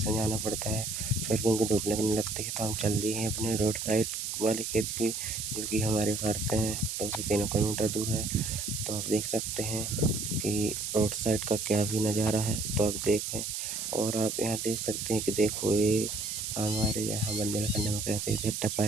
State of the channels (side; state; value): right; noise; hiss, 4 dB below the sound